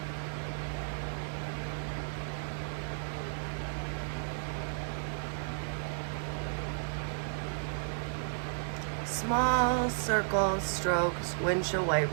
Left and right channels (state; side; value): silent; left; 55 dB below the other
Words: Small circle strokes, windshield